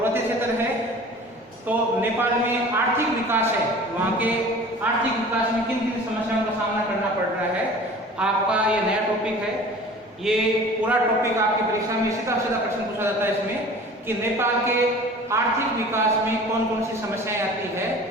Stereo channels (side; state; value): both; normal; correlation 0.43